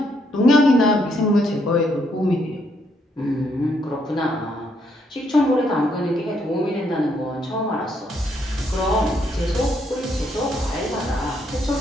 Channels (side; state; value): both; normal; correlation 0.73